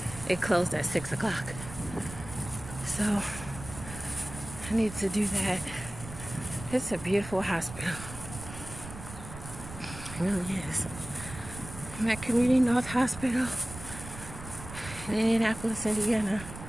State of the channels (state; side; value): noise; right; rumble, 12 dB below the sound